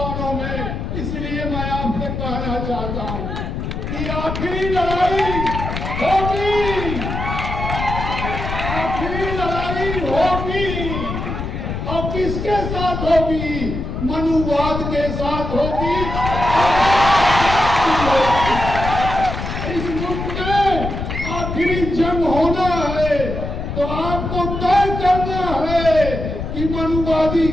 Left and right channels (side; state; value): left; noise; rumble, 5 dB below the sound